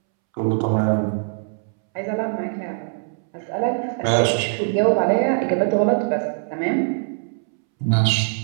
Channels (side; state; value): left; silent; 64 dB below the other